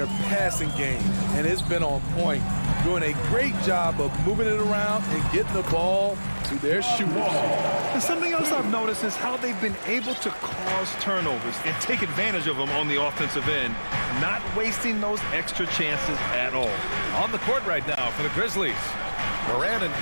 passing game, and it's been on point. Doing a great job of moving it around and getting the ball to their shooters. And something else I've noticed is how they've been able to cause turnovers and take advantage of them on the offensive end, not wasting those extra chances at all. On the court right now for the Grizzlies. Morant and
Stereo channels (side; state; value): both; inverted; correlation -1.00